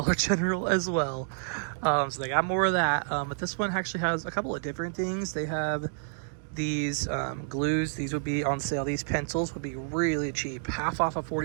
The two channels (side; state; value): left; silent; digital silence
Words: General as well. So they got more of that. But this one actually has a couple of different things. They have these glues. These would be on sale. These pencils would be really cheap, half off of